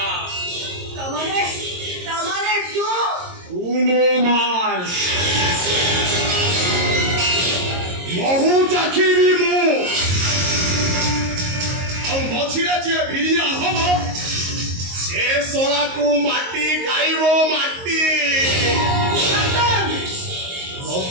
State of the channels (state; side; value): late; left; 22 ms